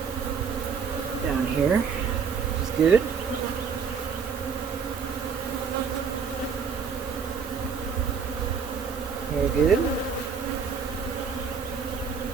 down here, which is good. Very good.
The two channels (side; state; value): left; quieter; 6.0 dB